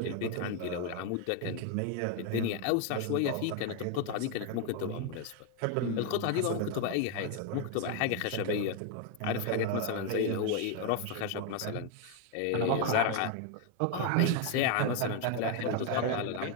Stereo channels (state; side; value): different; both; correlation 0.01